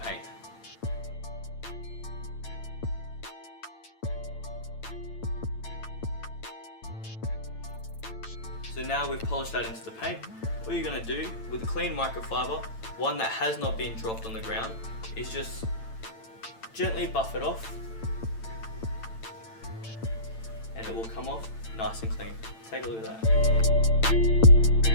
So now we've polished that into the paint. What you're going to do with a clean microfiber, one that has not been dropped on the ground, is just gently buff it off, and it will come off nice and clean. Take a look at that.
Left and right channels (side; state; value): right; late; 8.9 ms